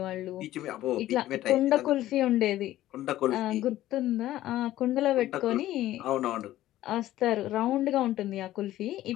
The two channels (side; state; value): right; quieter; 14.4 dB